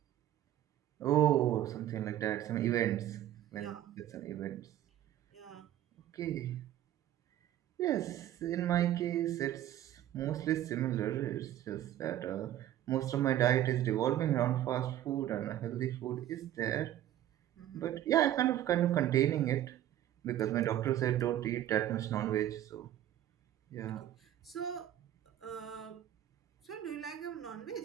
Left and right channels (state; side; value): quieter; left; 12.3 dB